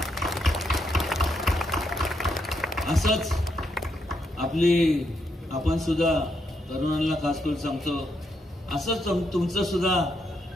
असंच आपण सुद्धा तरुणांना खास करून सांगतो, असंच तुमचं सुद्धा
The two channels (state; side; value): normal; both; correlation 0.79